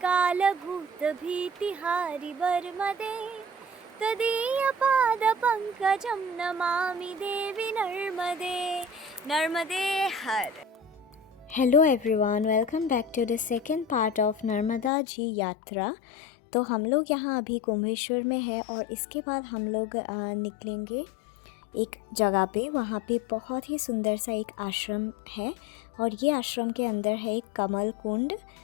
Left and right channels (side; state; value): right; drops out; at 14.9 s